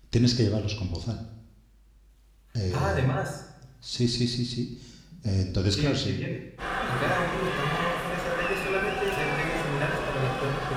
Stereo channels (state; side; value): identical; both; correlation 1.00